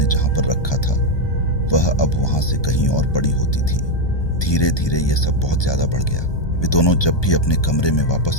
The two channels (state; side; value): late; right; 1.2 ms